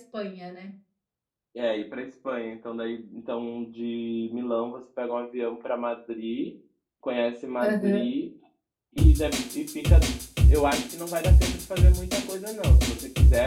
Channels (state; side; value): identical; both; correlation 1.00